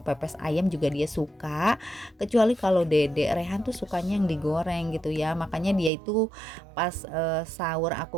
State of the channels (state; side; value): drops out; left; at 5.9 s